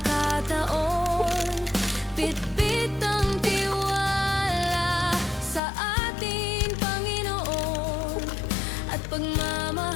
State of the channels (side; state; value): right; drops out; at 5.6 s